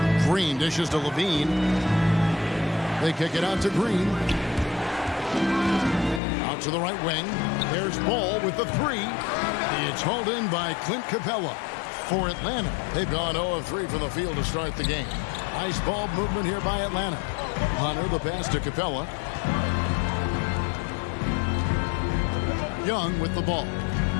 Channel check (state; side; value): drops out; right; at 6.2 s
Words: Green dishes to Levine. They kick it out to Green. Out to the right wing. There's Ball with the three. It's hauled in by Clint Capella. For Atlanta, they've gone 0 of 3 from the field to start the game. Nice ball movement here by Atlanta. Hunter, the pass to Capella. Young with the ball.